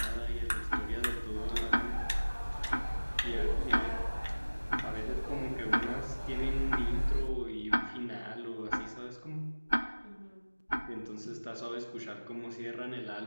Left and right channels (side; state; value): both; inverted; correlation -1.00